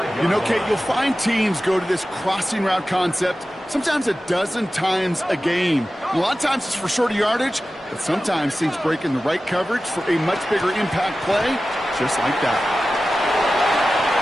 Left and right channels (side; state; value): both; normal; correlation 0.95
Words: You know, Kate, you'll find teams go to this crossing route concept sometimes a dozen times a game. A lot of times it's for shorter yardage, but sometimes things break in the right coverage for a much bigger impact play, just like that.